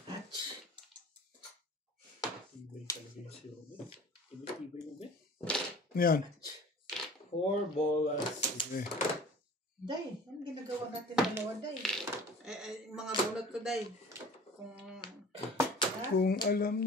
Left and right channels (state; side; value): normal; both; correlation 0.44